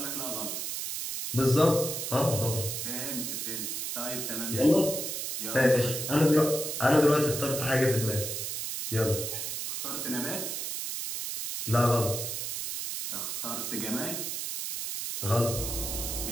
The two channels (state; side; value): noise; right; hiss, 4 dB below the sound